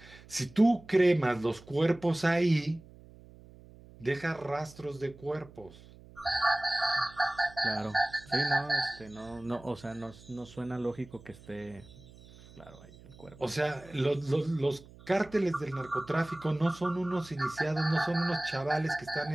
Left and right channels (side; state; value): right; noise; hum, 21 dB below the sound